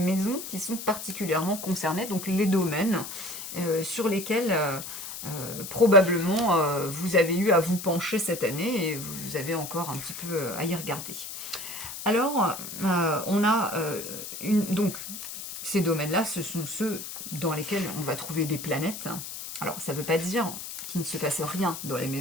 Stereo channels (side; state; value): left; noise; hiss, 9 dB below the sound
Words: qui sont particulièrement concernées, donc les domaines sur lesquels probablement vous avez eu à vous pencher cette année et vous avez encore un petit peu à y regarder. Alors, on a donc ces domaines-là, ce sont ceux dans lesquels on va trouver des planètes. Alors, ça ne veut pas dire qu'il ne se passe rien dans les